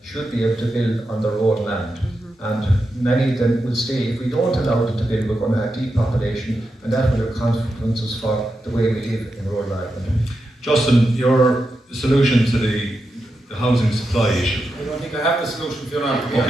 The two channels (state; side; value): normal; both; correlation 0.87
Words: should be able to build on their own land. And many of them will stay. If we don't allow them to build, we're going to have depopulation, and that will have consequences for the way we live in rural Ireland. Justin, your solution to the housing supply issue? I don't think I have the solution for you now. Okay,